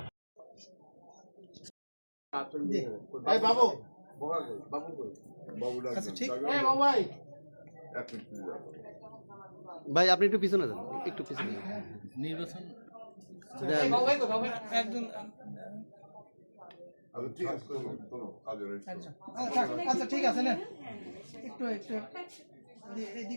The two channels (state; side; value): inverted; both; correlation -1.00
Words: ভাই আপনি একটু পিছনে যান, একটু পিছনে নির্বাচন একজন আচ্ছা ঠিক আছে না, একটু একটু